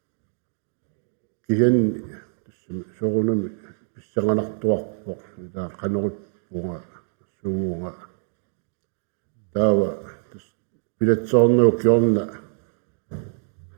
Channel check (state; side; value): silent; left; digital silence